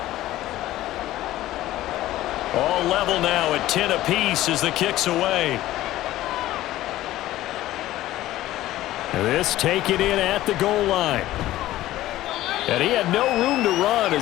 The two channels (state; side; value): quieter; right; 15.2 dB